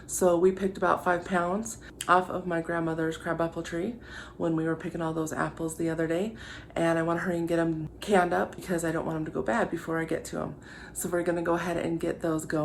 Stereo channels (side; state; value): both; identical; correlation 1.00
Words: So we picked about 5 pounds off of my grandmother's crabapple tree when we were picking all those apples the other day, and I want to hurry and get them canned up because I don't want them to go bad before I get to them. So we're going to go ahead and get those